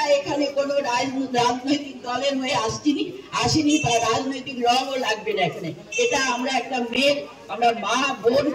এখানে কোনো রাজনৈতিক দলের হয়ে আসিনি বা রাজনৈতিক রঙও লাগবে না এখানে। এটা আমরা একটা মেয়ের, আমরা মা, বোন,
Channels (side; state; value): both; identical; correlation 1.00